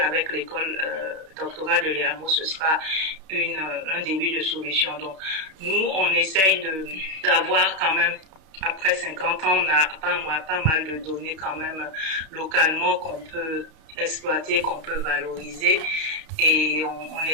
l'école doctorale de l'EAMO, ce sera un début de solution. Donc, nous, on essaye d'avoir quand même, après 50 ans, on a pas mal de données quand même localement qu'on peut exploiter, qu'on peut valoriser. Et on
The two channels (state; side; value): late; left; 32 ms